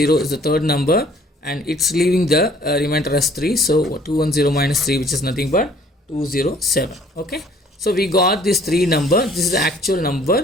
is the third number and it's leaving the remainder as 3. So 210 minus 3, which is nothing but 207. Okay. So we got this 3 number. This is the actual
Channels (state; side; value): normal; both; correlation 0.56